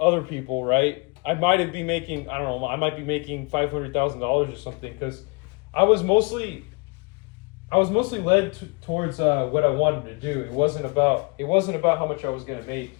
people, right? I might have been making, I don't know, I might be making $500,000 or something because I was mostly led towards what I wanted to do. It wasn't about how much I was going to make.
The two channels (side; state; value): right; quieter; 31.4 dB